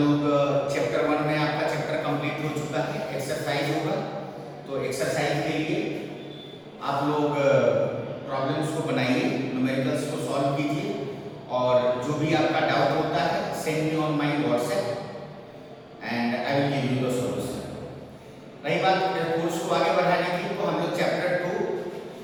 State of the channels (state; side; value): identical; both; correlation 1.00